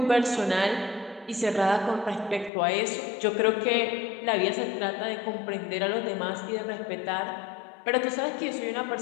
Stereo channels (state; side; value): drops out; right; at 2.5 s